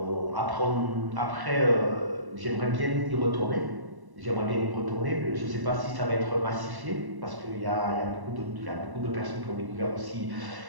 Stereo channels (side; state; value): left; late; 1.1 ms